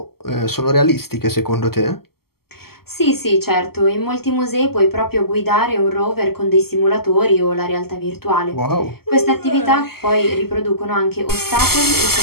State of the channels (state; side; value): late; right; 0.95 ms